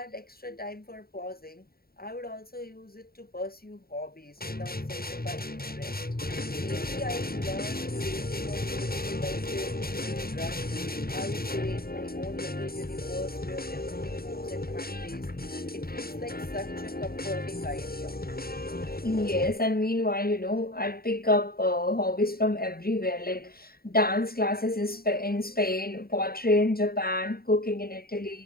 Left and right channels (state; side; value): late; right; 0.44 ms